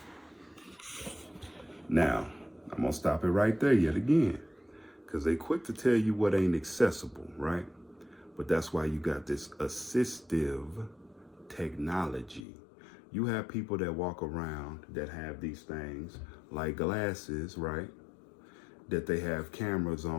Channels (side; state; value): right; drops out; at 12.5 s